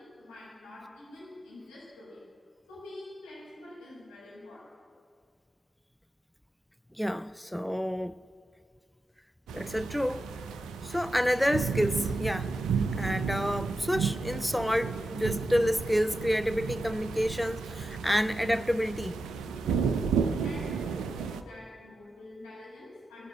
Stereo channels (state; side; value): normal; both; correlation 0.88